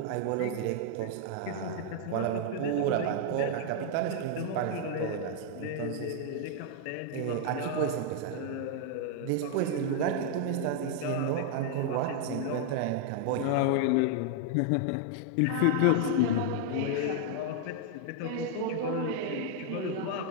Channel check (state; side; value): different; both; correlation 0.00